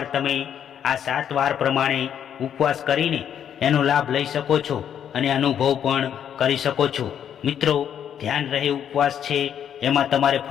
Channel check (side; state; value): right; quieter; 9.1 dB